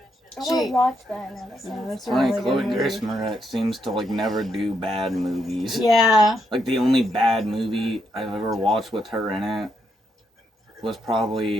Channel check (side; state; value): both; normal; correlation 0.79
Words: I want to watch that now. That sounds That's a Funny, really Chloe good movie. Grace Moretz seems to like never do bad movies. Yeah. Like the only bad movie I've ever watched with her in it was